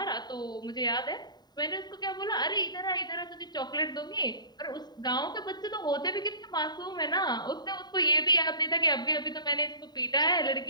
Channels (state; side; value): late; right; 0.20 ms